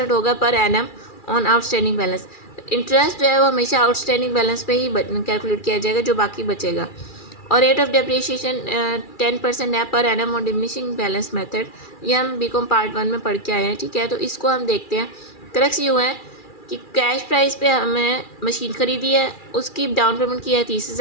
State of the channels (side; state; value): right; late; 2.4 ms